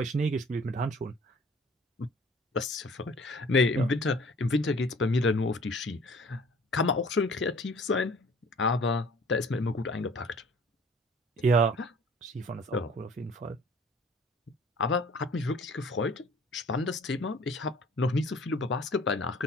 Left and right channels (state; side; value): normal; both; correlation 0.50